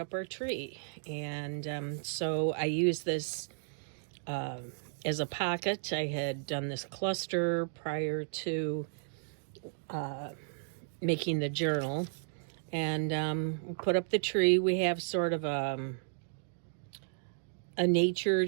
our tree, and so I use this as a pocket. I had done this cluster prior to making the journal, and we put up the tree. We have sort of a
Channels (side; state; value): left; silent; digital silence